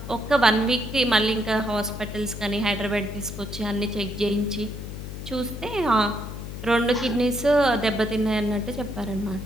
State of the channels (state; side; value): noise; left; hum, 9 dB below the sound